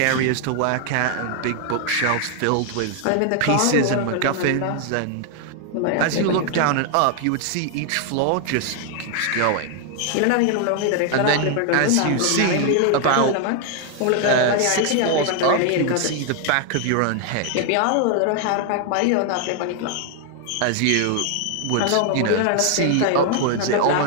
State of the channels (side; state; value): both; different; correlation 0.00